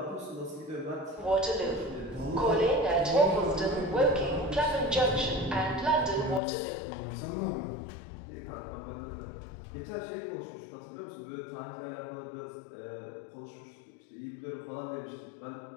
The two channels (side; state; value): right; drops out; at 6.4 s